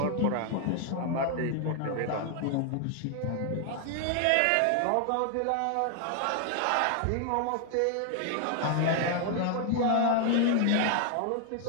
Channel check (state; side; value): different; both; correlation 0.00